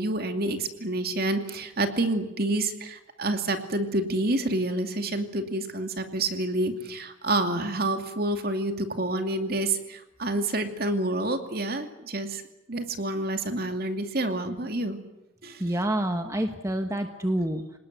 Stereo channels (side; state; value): both; normal; correlation 0.39